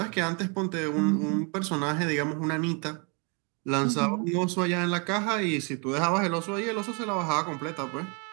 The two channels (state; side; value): quieter; left; 35.1 dB